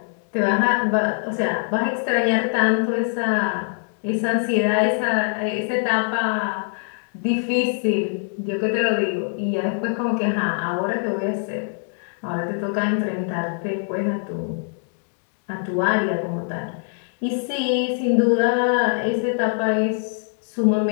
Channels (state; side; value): silent; right; 56 dB below the other